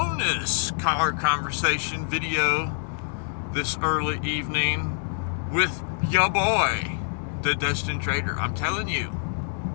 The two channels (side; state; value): right; silent; digital silence